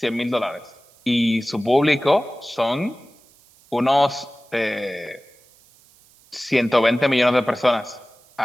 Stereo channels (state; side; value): noise; right; hiss, 29 dB below the sound